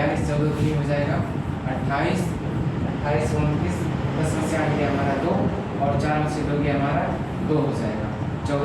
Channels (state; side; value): identical; both; correlation 1.00